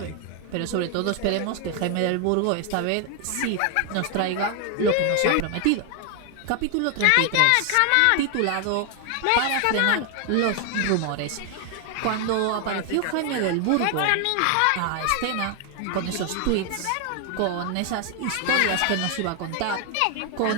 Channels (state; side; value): different; both; correlation 0.00